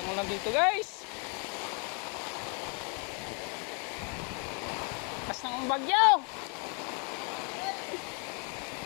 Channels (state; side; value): quieter; right; 37.2 dB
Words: mo lang dito guys. Kasang ang bagyo.